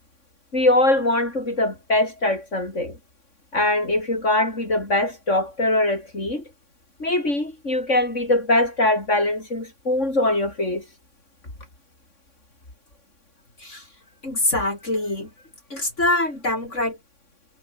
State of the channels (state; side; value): late; right; 3.6 ms